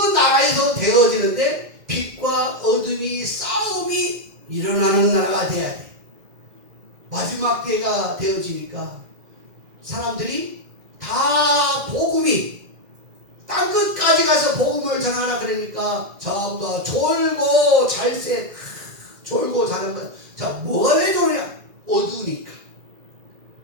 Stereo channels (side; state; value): left; late; 2.1 ms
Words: 나라에서 되어지는데 빛과 어둠이 싸움이 일어나는 나라가 돼야 돼. 마지막 때가 되어지니까 사람들이 다 복음이 땅끝까지 가서 복음을 전하라 그러니까 전부 다 졸고 잘새 졸고 자는 거야. 자, 뭐가 왜 졸냐? 어두우니까.